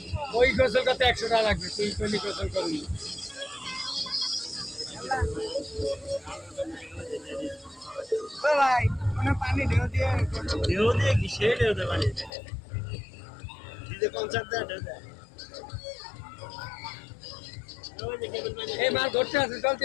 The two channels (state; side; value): drops out; right; at 12.3 s